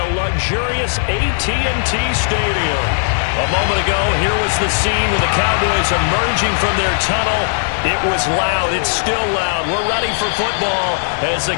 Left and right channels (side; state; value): right; silent; digital silence